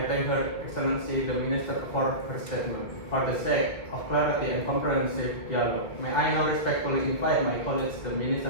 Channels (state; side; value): late; right; 2.2 ms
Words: thank Her Excellency the Minister for her statement. For the sake of clarity and comprehensive dialogue, may I now respectfully invite my colleagues, the Minister